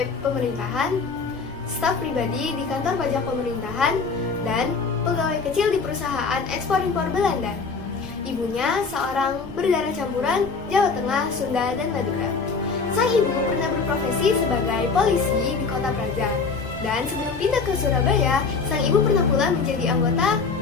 pemerintahan, staf pribadi di kantor pajak pemerintahan, dan pegawai kecil di perusahaan ekspor-impor Belanda. Ibunya seorang berdarah campuran Jawa Tengah, Sunda, dan Madura. Sang ibu pernah berprofesi sebagai polisi di Kota Praja. Dan sebelum pindah ke Surabaya, sang ibu pernah pula menjadi anggota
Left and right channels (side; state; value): right; quieter; 4.8 dB